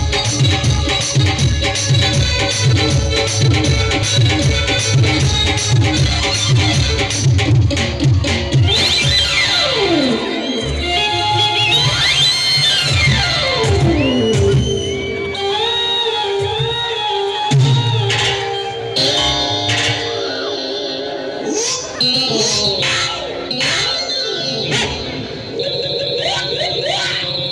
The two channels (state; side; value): identical; both; correlation 1.00